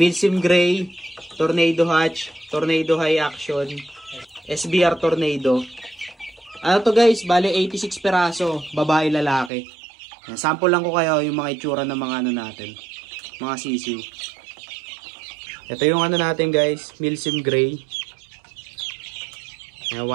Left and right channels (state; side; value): drops out; left; at 9.5 s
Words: Gray, Tornado Hatch, Tornado High Action, SBR Tornado. Ano to guys, bali 86 peraso, babae lalaki. Sample lang ko kayo yung mga itsura ng mga ano natin, mga sisiw. Ito yung ano natin guys, Milsim Gray. 1